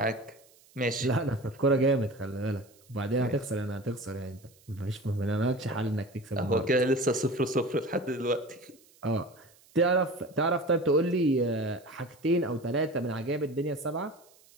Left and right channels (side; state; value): right; noise; hiss, 29 dB below the sound